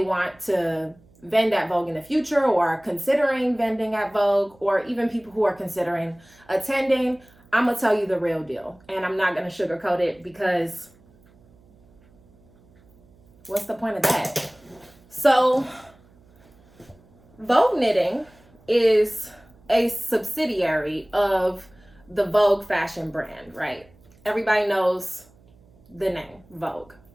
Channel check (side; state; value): right; noise; hum, 29 dB below the sound